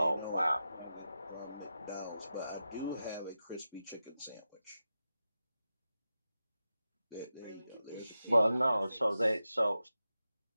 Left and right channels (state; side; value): inverted; both; correlation -0.91